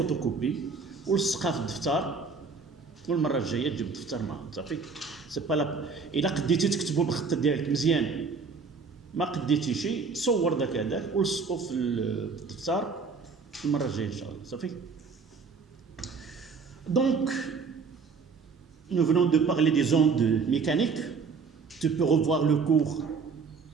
ولصقها في الدفتر والمره الجايه تجيب الدفتر معاك صافي. سي با لا الا قديتي تكتبوا بالخط ديالك مزيان ما قديتي شي صور داك ولصقوا في الدفتر المره الجايه ان شاء الله صافي. Donc nous venons de parler des ondes mécaniques. Tu peux revoir le cours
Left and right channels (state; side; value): quieter; left; 4.9 dB